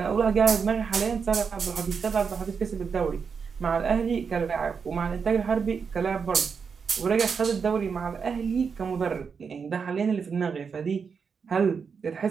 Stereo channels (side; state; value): left; quieter; 5.9 dB